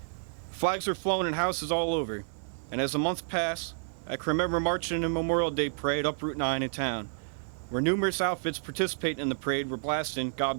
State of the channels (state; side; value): silent; left; digital silence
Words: Flags were flown in houses all over, and as the months passed, I can remember marching in a Memorial Day parade up Route 9 in town, where numerous outfits participating in the parade were blasting "God